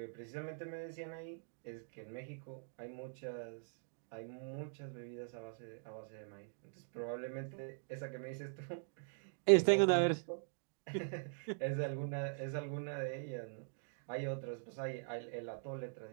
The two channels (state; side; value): silent; left; digital silence